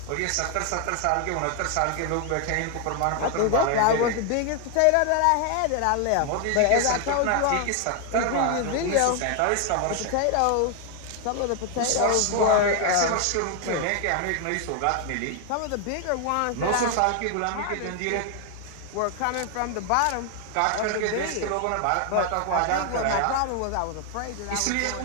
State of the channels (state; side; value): different; both; correlation 0.00